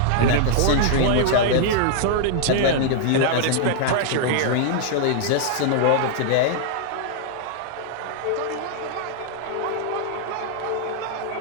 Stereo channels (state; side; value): different; both; correlation -0.01